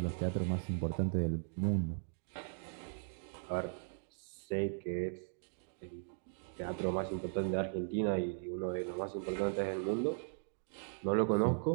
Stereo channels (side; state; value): left; silent; digital silence